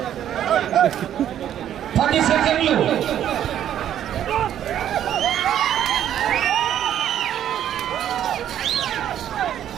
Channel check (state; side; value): quieter; left; 10.7 dB